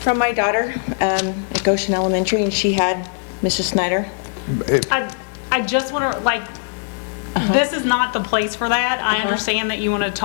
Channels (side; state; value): right; silent; digital silence